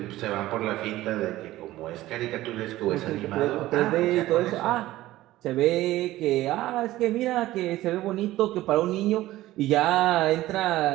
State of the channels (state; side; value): quieter; left; 16.0 dB